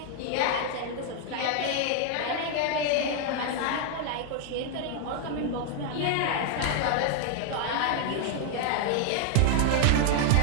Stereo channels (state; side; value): different; both; correlation 0.00